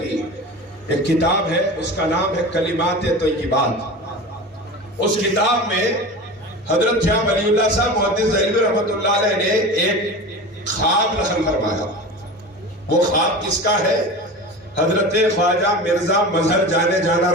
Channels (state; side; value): normal; both; correlation 0.32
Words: ایک کتاب ہے، اس کا نام ہے کلمات طیبات. اس کتاب میں حضرت شاہ ولی اللہ صاحب محدث دہلوی رحمۃ اللہ علیہ نے ایک خواب نقل فرمایا. وہ خواب کس کا ہے؟ حضرت خواجہ مرزا مظہر جانے جانا